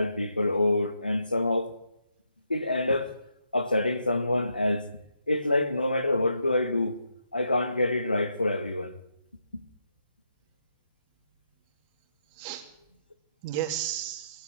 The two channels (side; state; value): both; inverted; correlation -0.80